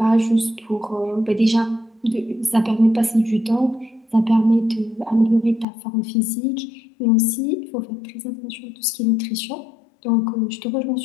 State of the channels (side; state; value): right; drops out; at 5.7 s